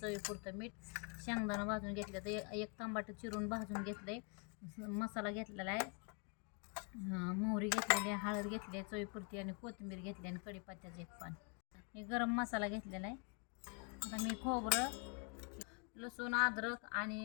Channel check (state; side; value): quieter; right; 35.5 dB